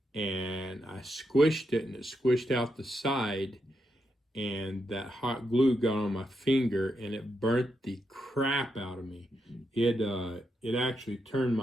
And I squished it, and it squished out the side, and that hot glue got on my finger, and it burnt the crap out of me. It actually turned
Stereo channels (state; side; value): normal; both; correlation 0.83